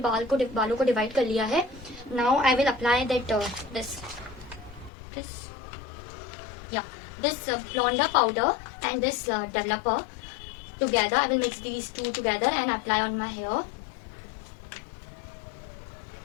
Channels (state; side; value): drops out; right; at 4.9 s